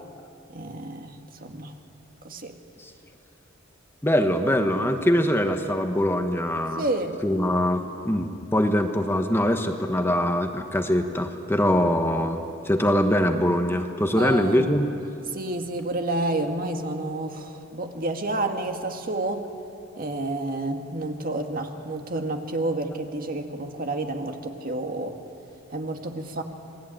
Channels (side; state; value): both; normal; correlation 0.68